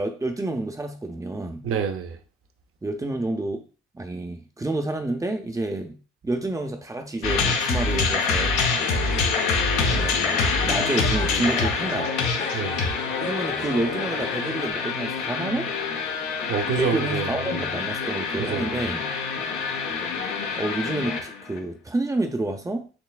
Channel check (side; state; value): both; normal; correlation 0.45